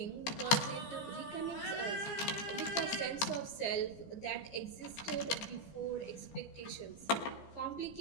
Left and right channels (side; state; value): right; late; 15 ms